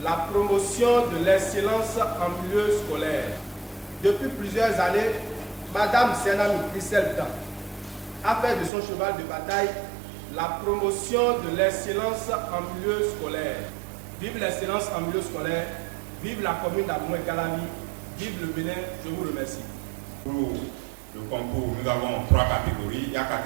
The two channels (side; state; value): left; drops out; at 8.7 s